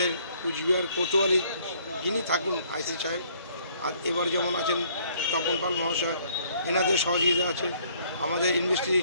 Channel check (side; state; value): both; inverted; correlation -0.63